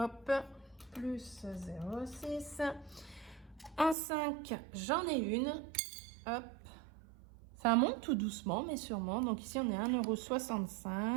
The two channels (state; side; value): drops out; left; at 4.0 s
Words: Plus 0,6. En 5, j'en ai une. Hop. Ça monte tout doucement, mais sûrement. Donc ici, on est à